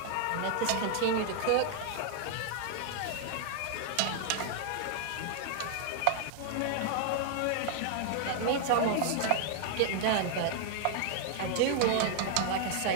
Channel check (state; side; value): different; both; correlation 0.00